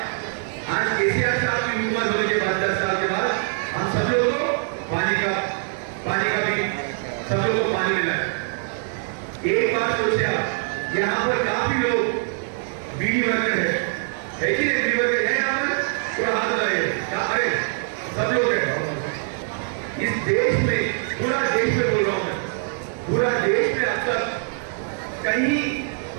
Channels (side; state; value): left; silent; 58 dB below the other